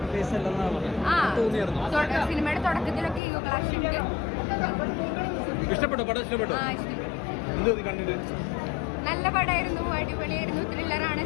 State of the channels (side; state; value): right; drops out; at 3.2 s